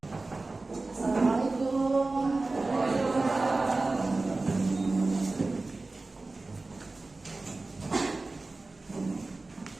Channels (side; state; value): left; quieter; 3.3 dB